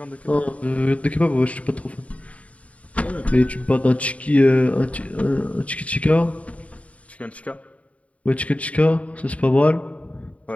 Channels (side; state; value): right; late; 0.066 ms